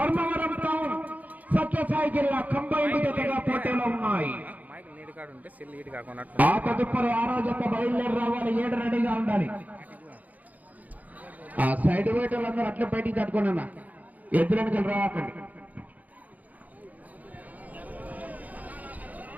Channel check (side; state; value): left; late; 0.078 ms